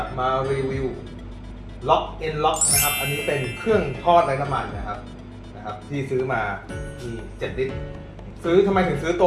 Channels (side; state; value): both; identical; correlation 1.00